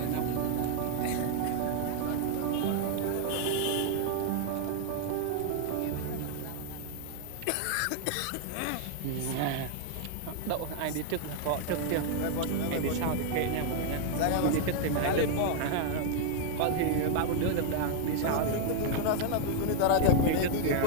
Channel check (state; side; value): different; both; correlation 0.00